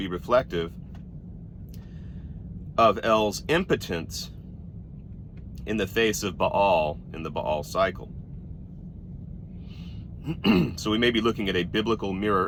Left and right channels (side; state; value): both; identical; correlation 1.00